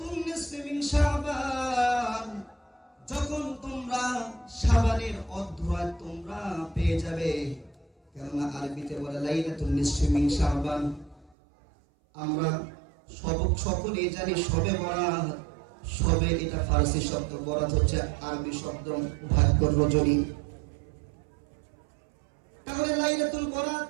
নিসফি মিন শাবান, যখন তোমরা শাবানের অর্ধরাত তোমরা পেয়ে যাবে, কেননা আরবিতে বলে লাইলাতুন নিসফি মিন শাবান। আমরা সকলেই জানি শবে বরাত, শবে এটা ফারসি শব্দ, বরাত হচ্ছে আরবি শব্দ, ভাগ্যর রজনী। তাহলে লাইলাতুল বরাত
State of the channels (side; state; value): left; drops out; at 11.3 s